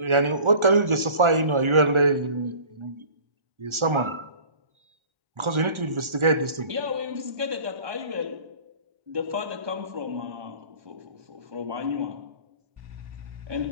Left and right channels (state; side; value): late; left; 1.4 ms